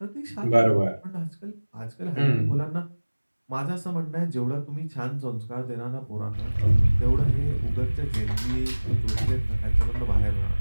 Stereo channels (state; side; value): inverted; both; correlation -1.00